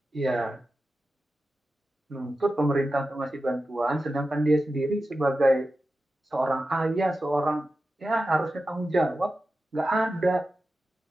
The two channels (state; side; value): normal; both; correlation 0.92